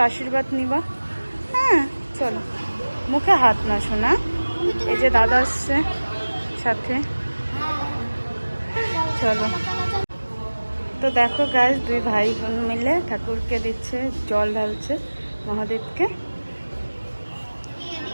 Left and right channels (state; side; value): inverted; both; correlation -1.00